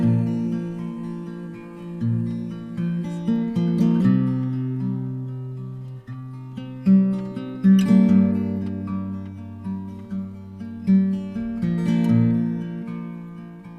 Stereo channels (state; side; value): identical; both; correlation 1.00